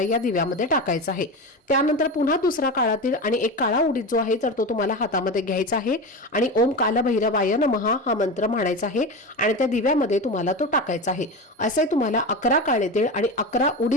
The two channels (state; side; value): normal; both; correlation 0.23